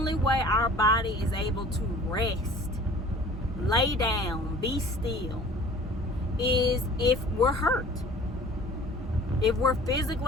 way our body is able to rest, lay down, be still, is if we're hurt. If we're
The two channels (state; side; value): normal; both; correlation 0.47